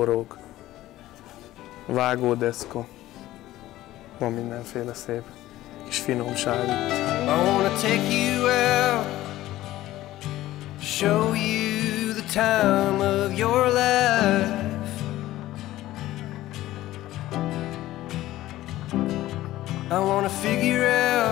vágódeszka, van mindenféle szép kis finomság itt. I wanna take you out, show you the time of your life. I wanna figure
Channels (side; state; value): right; quieter; 15.4 dB